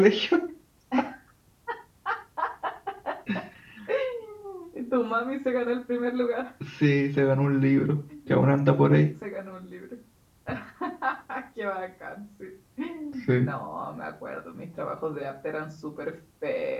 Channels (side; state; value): both; identical; correlation 1.00